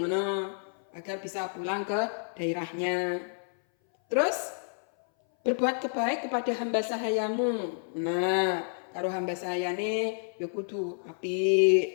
ngono agar bisa pulang ke daerahnya. Terus berbuat kebaik kepada hamba sahayamu. Nah, karo hamba sahayane ya kudu apik,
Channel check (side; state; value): right; silent; 58 dB below the other